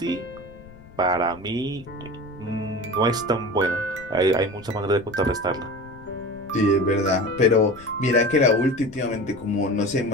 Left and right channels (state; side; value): noise; left; rumble, 21 dB below the sound